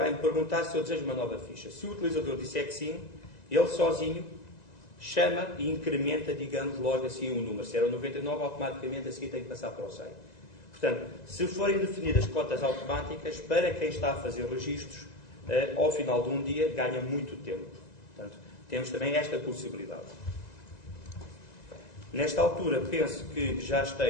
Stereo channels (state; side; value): late; right; 1.9 ms